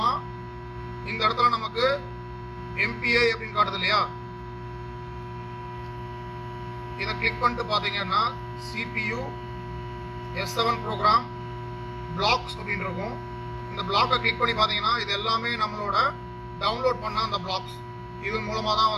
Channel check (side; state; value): both; identical; correlation 1.00